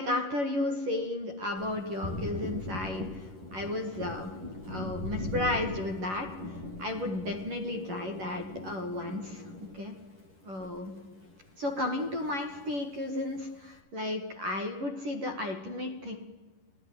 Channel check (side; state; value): left; late; 11 ms